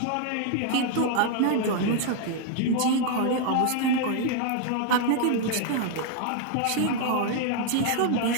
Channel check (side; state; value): both; different; correlation 0.00